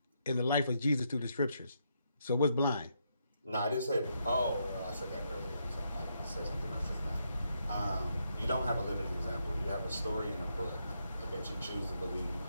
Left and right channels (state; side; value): inverted; both; correlation -0.79